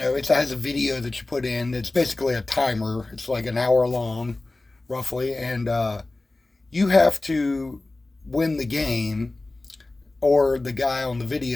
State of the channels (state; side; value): quieter; right; 3.0 dB